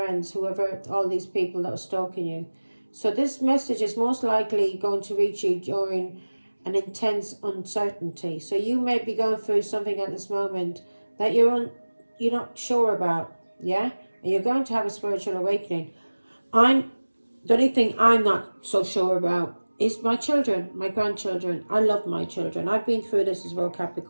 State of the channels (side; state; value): both; inverted; correlation -1.00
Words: whoever, all these people that were stalking you. So this message is most likely going to reach you during an intense uncertainty. So you may be going through something at this moment that you're not sure about, yeah? And you're going to have a spiritual awakening. The only thing I'm not so sure about is my children, my grandchildren. I love my children. I've been through this as well,